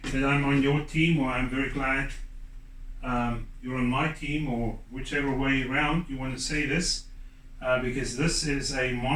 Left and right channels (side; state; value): both; identical; correlation 1.00